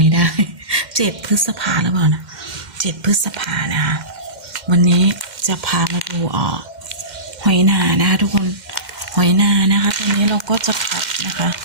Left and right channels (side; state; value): left; late; 2.1 ms